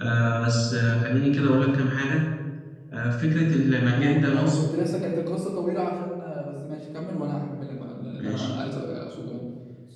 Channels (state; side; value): identical; both; correlation 1.00